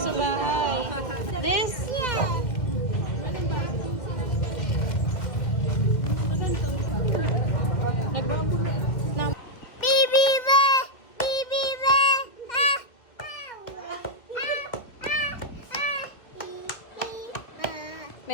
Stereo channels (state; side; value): late; right; 2.1 ms